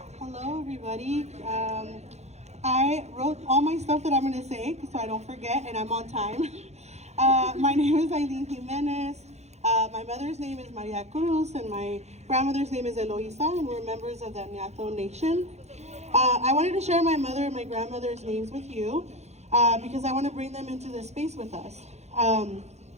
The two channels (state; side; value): late; left; 0.32 ms